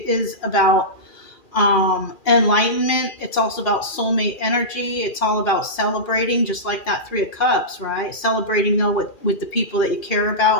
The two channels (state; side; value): late; right; 2.4 ms